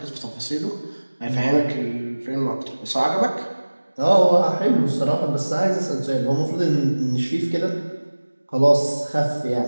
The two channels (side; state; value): both; inverted; correlation -1.00